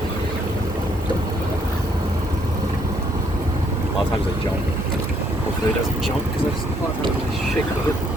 A lot of times they jump. Hopefully it doesn't jump because I just a lot of times they shake it.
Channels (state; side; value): normal; both; correlation 0.69